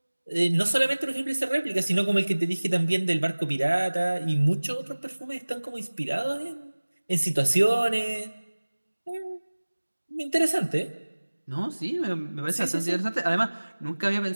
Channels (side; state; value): both; inverted; correlation -1.00